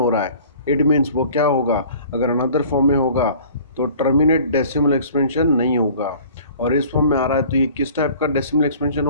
रहा है, इट मीन्स वो क्या होगा? अगर अनदर फॉर्म में होगा तो टर्मिनेट डेसिमल एक्सपेंशन नहीं होगा। और इस फॉर्म में आ रहा है तो ये किस टाइप का डेसिमल एक्सपेंशन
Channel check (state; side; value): inverted; both; correlation -0.48